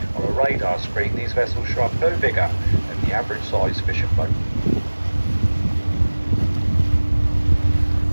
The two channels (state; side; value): inverted; both; correlation -1.00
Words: On a radar screen, these vessels show up no bigger than the average size fishing boat.